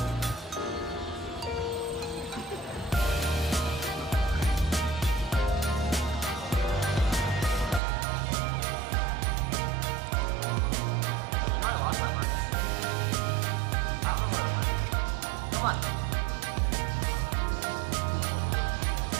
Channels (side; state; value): left; drops out; at 7.8 s